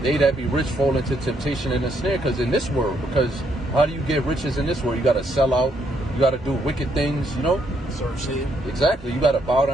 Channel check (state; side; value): normal; both; correlation 0.73